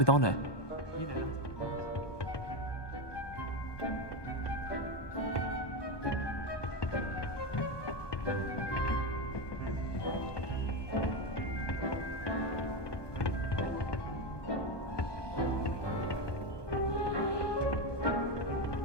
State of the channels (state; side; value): late; right; 1.2 ms